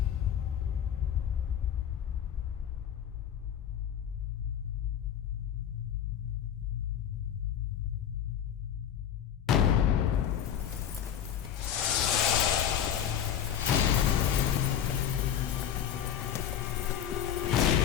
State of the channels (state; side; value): quieter; right; 9.5 dB